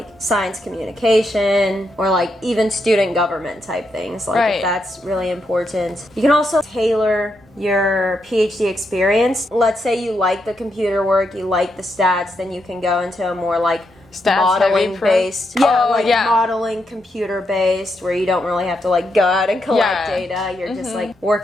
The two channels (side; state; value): both; normal; correlation 0.81